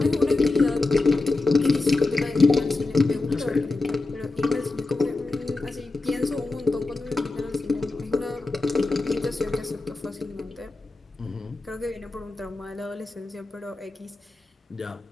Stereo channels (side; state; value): right; quieter; 3.4 dB